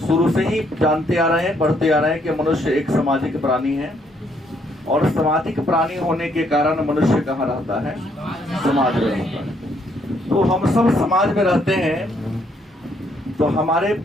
से ही जानते आ रहे हैं, पढ़ते आ रहे हैं कि मनुष्य एक सामाजिक प्राणी है, और सामाजिक प्राणी होने के कारण मनुष्य कहाँ रहता है, समाज में रहता है। तो हम सब समाज में रहते हैं, तो हमारे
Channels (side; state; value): both; normal; correlation 0.70